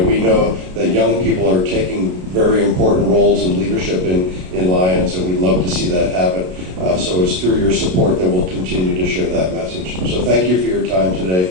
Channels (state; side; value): late; left; 33 ms